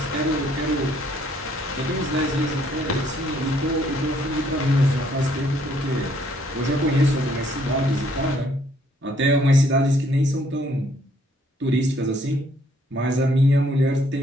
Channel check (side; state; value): both; normal; correlation 0.66